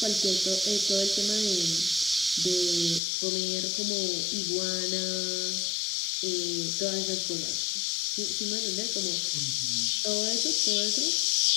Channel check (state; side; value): drops out; right; at 3.0 s